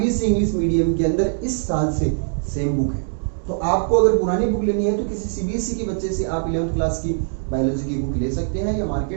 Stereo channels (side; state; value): left; silent; digital silence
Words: इंग्लिश मीडियम के अंदर इस साल से सेम बुक है। तो आपको अगर पुरानी बुक लेनी है तो किसी सीबीएसई के बच्चे से आप 11th क्लास की बायोलॉजी की बुक ले सकते हैं, या